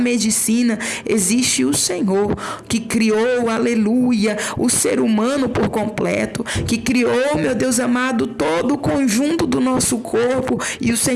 existe o Senhor, que criou, aleluia, o ser humano por completo, que criou, meu Deus amado, todo o conjunto do nosso corpo, e o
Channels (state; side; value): identical; both; correlation 1.00